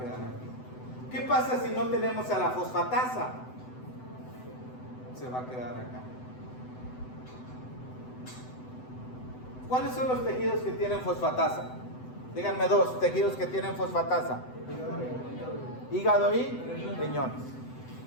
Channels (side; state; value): right; late; 7.9 ms